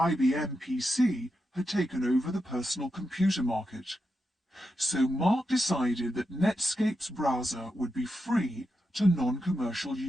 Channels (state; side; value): normal; both; correlation 0.87